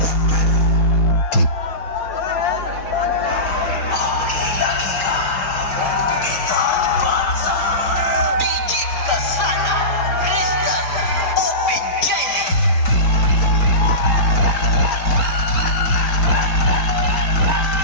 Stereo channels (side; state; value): right; late; 4.4 ms